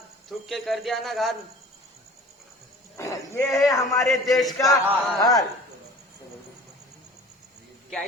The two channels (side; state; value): both; normal; correlation 0.44